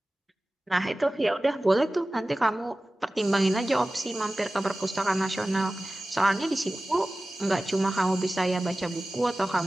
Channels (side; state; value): both; normal; correlation 0.97